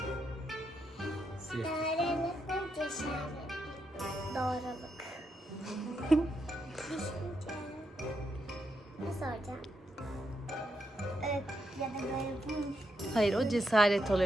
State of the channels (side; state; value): both; normal; correlation 0.81